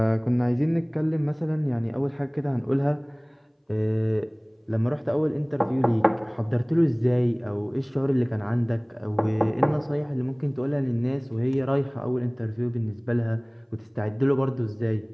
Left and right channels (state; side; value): identical; both; correlation 1.00